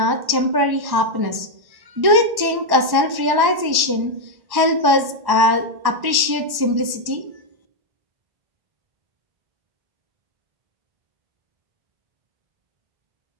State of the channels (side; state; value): left; late; 1.1 ms